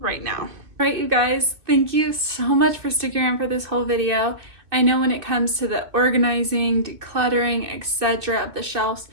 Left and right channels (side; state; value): left; late; 2.6 ms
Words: now. All right, you guys, thank you so much for sticking around for this whole video. I know when it comes to the organizing, decluttering, etc. of the shelves,